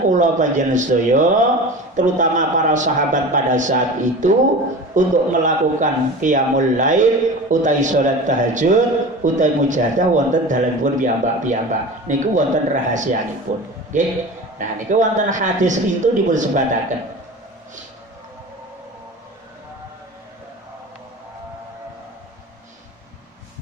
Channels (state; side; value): normal; both; correlation 0.34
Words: kula panjenengan sedaya terutama para sahabat pada saat itu untuk melakukan qiyamul lail utawi salat tahajud utawi mujahadah wonten dalemipun piyambak-piyambak. Niku wonten rahasianipun. Nggih. Nah niku wonten hadis itu dipun sebataken.